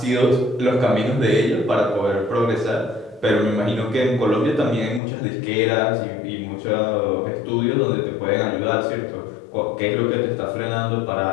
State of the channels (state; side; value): drops out; right; at 5.0 s